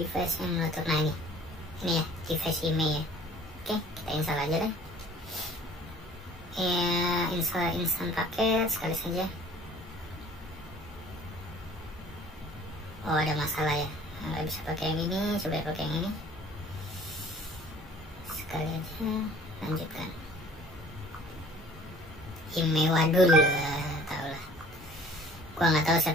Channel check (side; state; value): both; normal; correlation 0.51